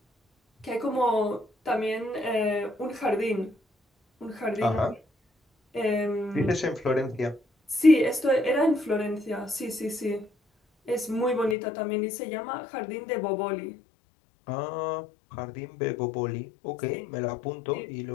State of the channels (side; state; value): right; drops out; at 11.6 s